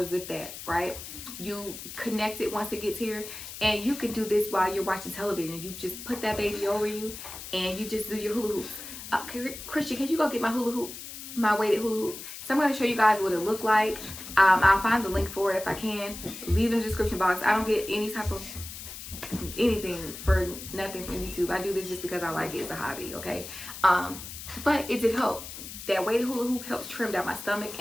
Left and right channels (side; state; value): left; noise; hiss, 11 dB below the sound